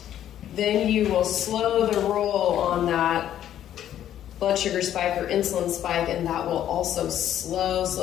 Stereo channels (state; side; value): quieter; right; 11.1 dB